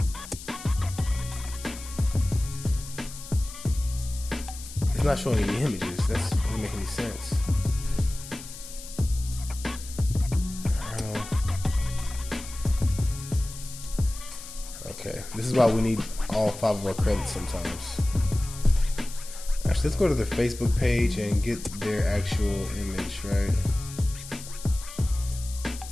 It's not showing any images. That doesn't make any sense. Okay, this is why we need all 5 of our credits sometimes. Actually, let's go to their Facebook page and get their actual image, right?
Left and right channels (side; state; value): left; noise; hiss, 13 dB below the sound